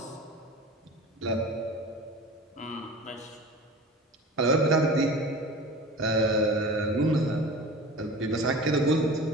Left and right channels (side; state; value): both; normal; correlation 0.36